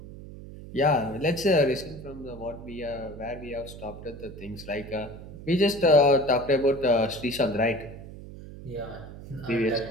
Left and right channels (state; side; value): noise; right; hum, 14 dB below the sound